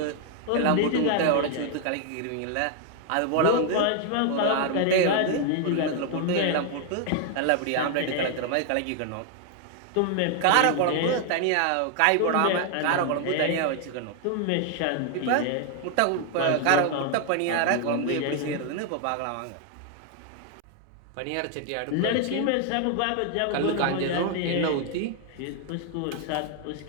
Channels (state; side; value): different; both; correlation 0.00